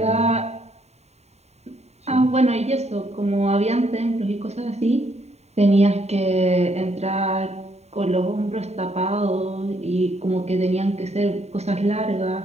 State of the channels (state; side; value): late; left; 0.32 ms